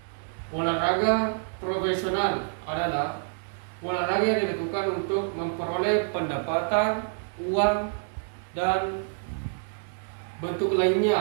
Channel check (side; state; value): left; silent; digital silence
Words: Olahraga profesional adalah olahraga yang dilakukan untuk memperoleh pendapatan, uang, dan bentuk